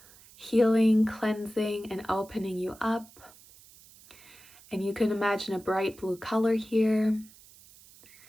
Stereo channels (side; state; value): right; noise; hiss, 24 dB below the sound